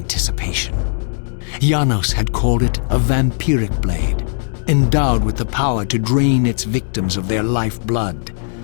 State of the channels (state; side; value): silent; right; digital silence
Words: Janos had called it a vampiric blade, endowed with the power to drain its victims of their lifeblood.